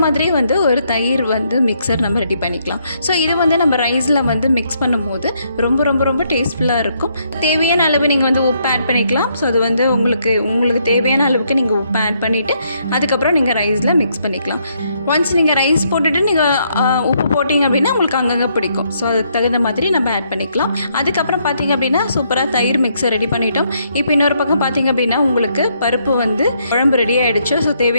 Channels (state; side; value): inverted; both; correlation -0.73